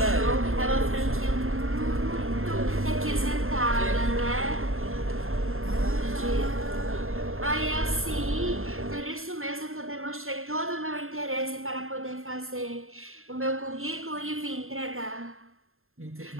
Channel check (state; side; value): late; left; 0.61 ms